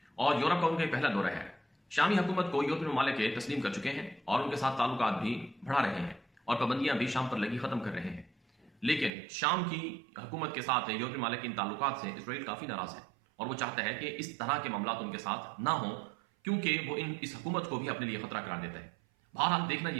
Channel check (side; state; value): left; drops out; at 9.1 s